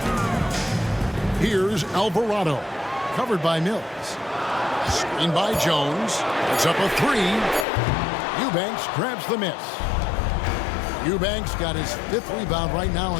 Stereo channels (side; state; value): right; drops out; at 7.7 s